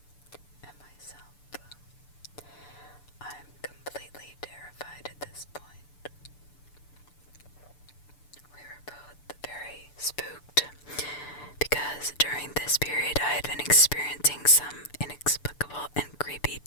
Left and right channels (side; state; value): right; late; 6.8 ms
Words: And myself. I'm completely terrified at this point. We were both very spooked because during this period I had been experiencing some inexplicable and creepy